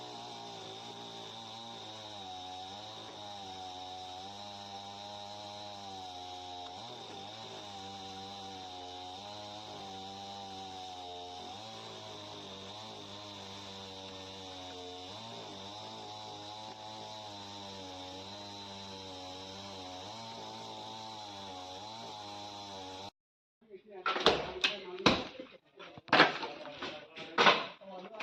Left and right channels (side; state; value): both; identical; correlation 1.00